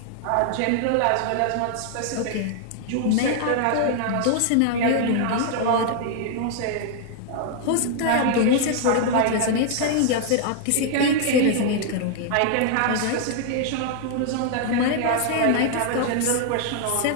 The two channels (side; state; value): both; different; correlation 0.00